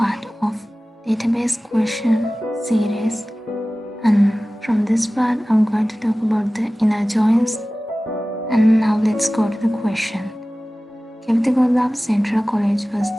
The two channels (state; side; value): normal; both; correlation 0.97